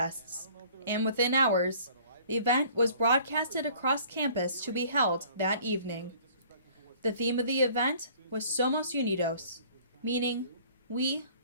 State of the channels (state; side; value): inverted; both; correlation -0.52